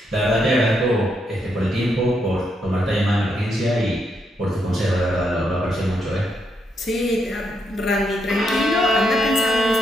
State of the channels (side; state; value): both; normal; correlation 0.78